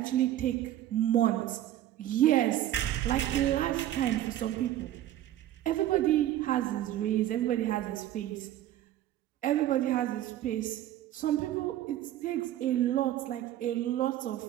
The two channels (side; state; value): left; quieter; 13.0 dB